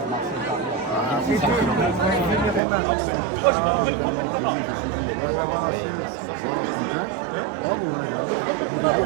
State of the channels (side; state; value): left; drops out; at 2.6 s